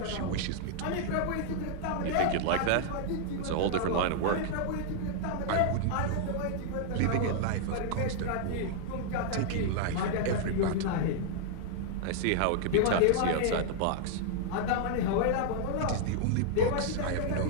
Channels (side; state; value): both; different; correlation -0.01